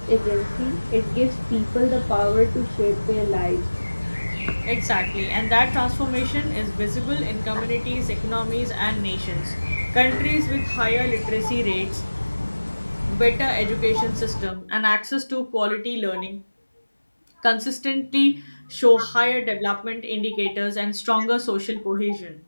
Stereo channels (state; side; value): inverted; both; correlation -1.00